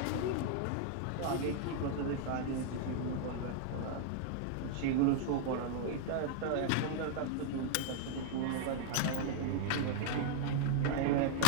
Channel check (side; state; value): both; different; correlation -0.01